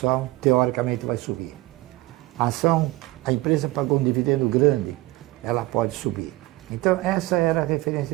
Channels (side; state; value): left; quieter; 19.2 dB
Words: teoricamente vai subir. A empresa pagou um dividendo grande, ela pode subir. Então essa era a referência